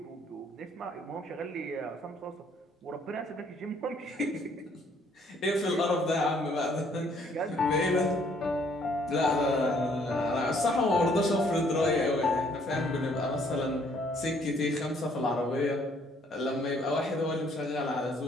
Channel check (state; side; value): normal; both; correlation 0.64